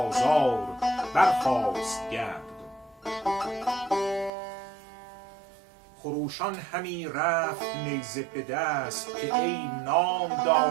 برخاست گرد. خروشان همی رفت نیزه به دست، که ای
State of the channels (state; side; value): drops out; left; at 4.3 s